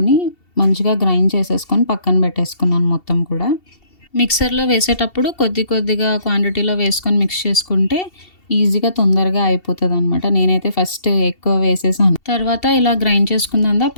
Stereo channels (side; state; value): right; late; 2.7 ms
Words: మంచిగా గ్రైండ్ చేసేసుకొని పక్కన పెట్టేసుకున్నాను మొత్తం కూడా. మిక్సర్‌లో వేసేటప్పుడు కొద్ది కొద్దిగా క్వాంటిటీలో వేసుకొని మిక్స్ చేసుకుంటే ఈజీగా తొందరగా అయిపోతదనమాట. నేనైతే ఫస్ట్ ఎక్కువ వేసేసాను. తర్వాత ఇలా గ్రైండ్ చేసుకుందంతా